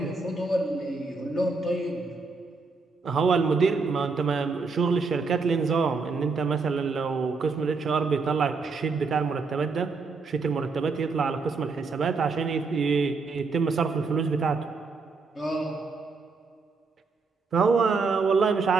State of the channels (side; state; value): left; quieter; 4.4 dB